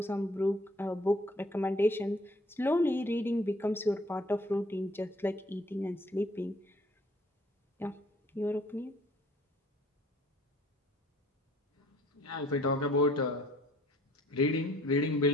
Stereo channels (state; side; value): normal; both; correlation 0.58